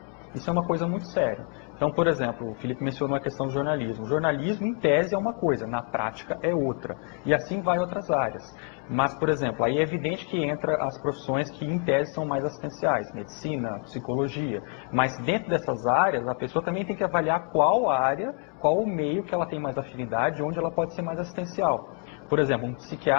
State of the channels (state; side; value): quieter; right; 37.0 dB